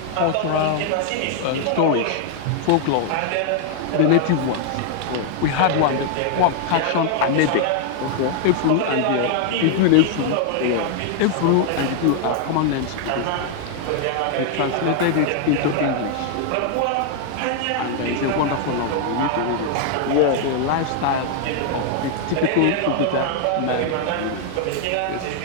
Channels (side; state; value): both; different; correlation 0.00